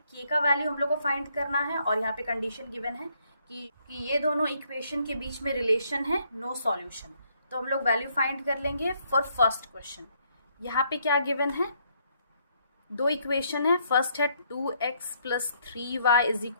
k का वैल्यू हम लोग को फाइंड करना है और यहाँ पे कंडीशन गिवन है कि ये दोनों इक्वेशन के बीच में रिलेशन है नो सॉल्यूशन. तो हम लोग वैल्यू फाइंड कर लेंगे फॉर फर्स्ट क्वेश्चन. यहाँ पे क्या गिवन है, दो इक्वेशन है. फर्स्ट है 2x + 3y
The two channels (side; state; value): both; inverted; correlation -0.70